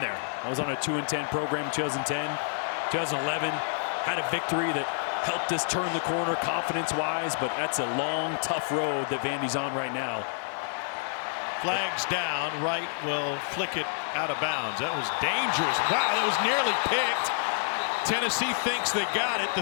there. I was on a 2-10 program in 2010, 2011, had a victory that helped us turn the corner confidence-wise, but that's a long, tough road that Vandy's on right now. Flags down. Wright will flick it out of bounds. That was dangerous. Wow, that was nearly picked. Tennessee thinks they got it.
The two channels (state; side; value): silent; right; digital silence